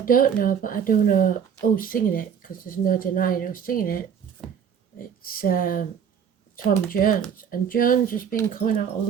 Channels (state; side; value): quieter; left; 7.7 dB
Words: don't know, but I do know who's singing it, because there's no denying who's singing it. It's Tom Jones, and Jones has been coming out a